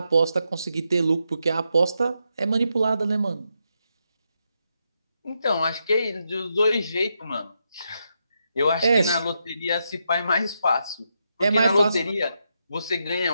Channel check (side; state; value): both; inverted; correlation -0.83